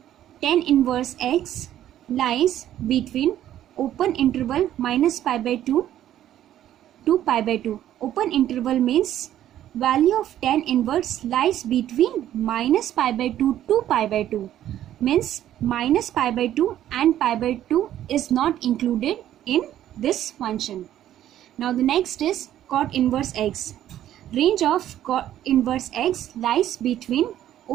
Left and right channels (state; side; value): quieter; left; 12.0 dB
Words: tan inverse x lies between open interval minus pi by 2 to pi by 2. Open interval means value of tan inverse lies between minus pi by 2 to pi by 2. Means minus pi by 2 and pi by 2 is not included in this function. Now the next is cot inverse x. Range of cot inverse x lies between